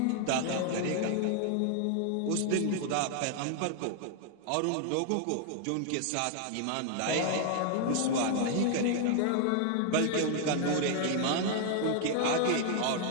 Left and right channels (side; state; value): both; different; correlation 0.00